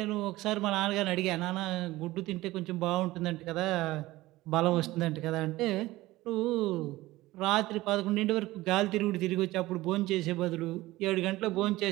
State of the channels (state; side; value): quieter; left; 18.1 dB